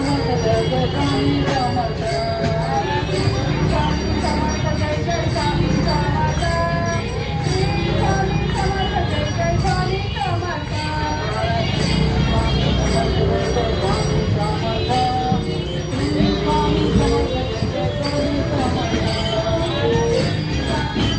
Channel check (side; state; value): both; identical; correlation 1.00